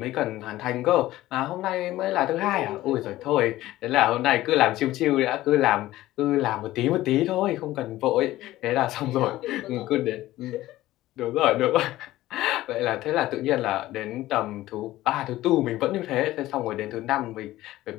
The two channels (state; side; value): quieter; right; 15.9 dB